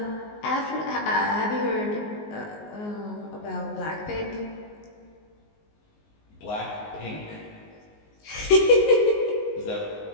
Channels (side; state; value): right; late; 19 ms